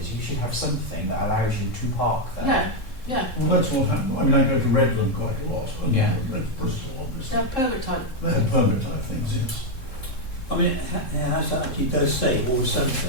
you should have something that allows you to park there. Yeah. Yeah. Well, that's what happened. I mean, I go to Redland quite a lot, and Yeah. Bristol, obviously. They have permit type. They have permit type things, yes. I mean, it has actually does say, or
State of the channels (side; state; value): right; late; 3.7 ms